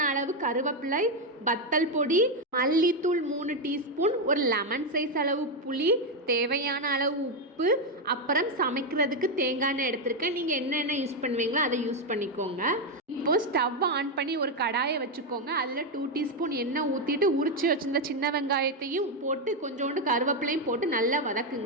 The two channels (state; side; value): normal; both; correlation 0.05